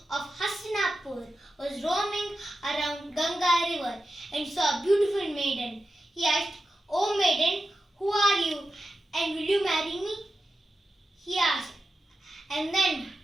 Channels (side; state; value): both; normal; correlation 0.91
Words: of Hastinapur was roaming around Ganga river and saw a beautiful maiden. He asked, "O maiden, who are you and will you marry me?" He asked. And then